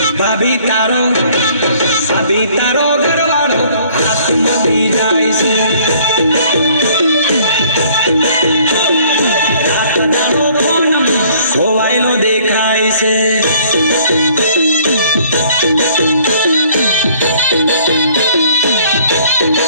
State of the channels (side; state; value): both; inverted; correlation -0.58